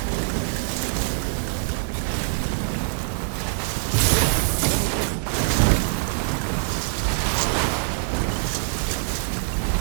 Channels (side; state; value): left; silent; digital silence